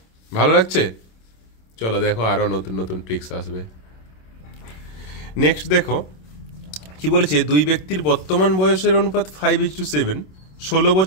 ভালো লাগছে? চলো দেখো আরও নতুন নতুন ট্রিক্স আসবে। নেক্সট দেখো কি বলেছে, দুই ব্যক্তির বর্তমান বয়সের অনুপাত 5:7। 16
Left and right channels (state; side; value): late; right; 27 ms